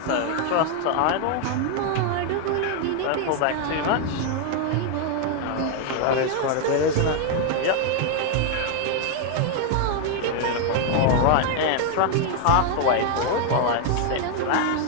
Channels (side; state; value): both; different; correlation 0.00